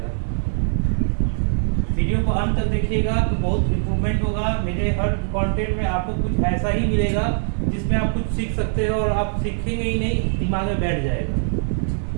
वीडियो को अंत तक देखिएगा तो बहुत इम्प्रूवमेंट होगा। मेरे हर कंटेंट में आपको कुछ ऐसा ही मिलेगा जिसमें आप कुछ सीख सकते हो, और आप सीखेंगे ही नहीं, दिमाग में बैठ जाएगा।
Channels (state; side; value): silent; left; 57 dB below the other